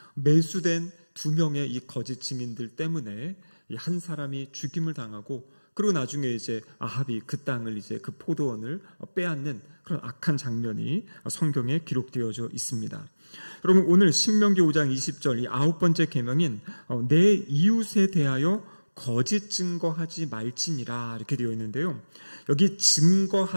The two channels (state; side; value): inverted; both; correlation -1.00